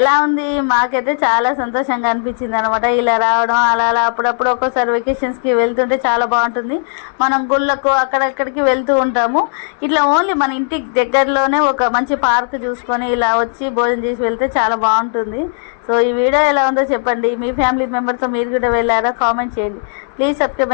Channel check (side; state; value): right; silent; digital silence